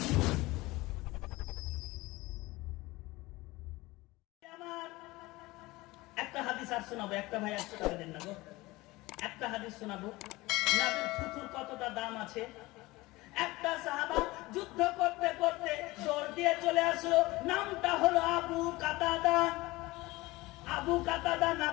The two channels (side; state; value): right; quieter; 20.6 dB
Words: আমার একটা হাদিস আর শোনাবো, একটা ভাই 100 টাকা দেন না গো, একটা হাদিস শোনাবো নবীর থুথুর কতটা দাম আছে। একটা সাহাবা যুদ্ধ করতে করতে দৌড় দিয়ে চলে আসলো, নামটা হলো আবু কাতাদা। আবু কাতাদা